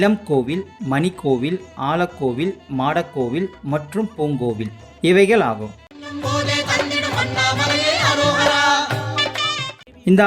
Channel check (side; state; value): both; identical; correlation 1.00